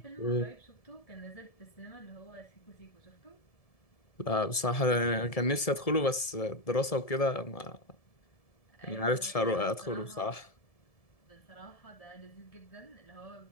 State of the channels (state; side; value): late; right; 1.7 ms